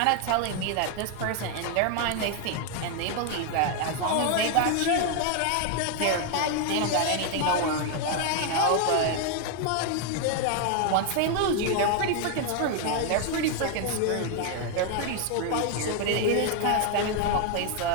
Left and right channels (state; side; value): different; both; correlation 0.00